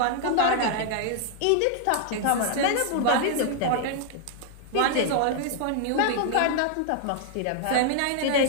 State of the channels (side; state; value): both; different; correlation 0.00